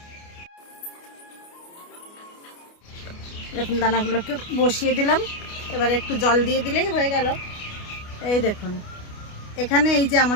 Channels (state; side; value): late; right; 29 ms